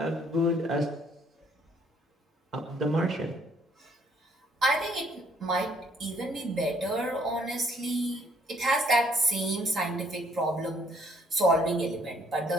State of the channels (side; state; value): both; normal; correlation 0.64